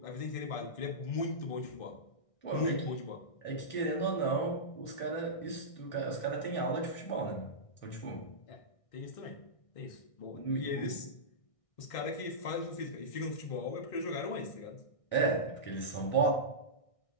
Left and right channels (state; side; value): late; right; 1.6 ms